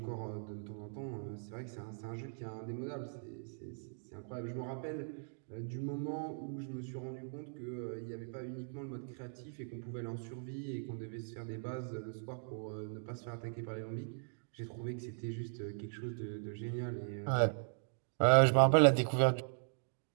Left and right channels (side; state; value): left; silent; digital silence